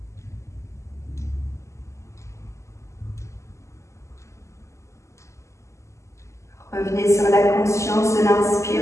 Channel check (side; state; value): right; late; 0.14 ms